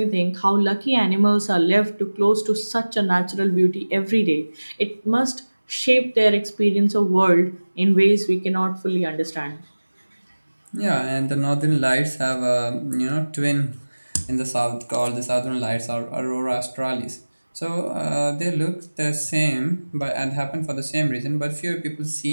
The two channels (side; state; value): both; inverted; correlation -1.00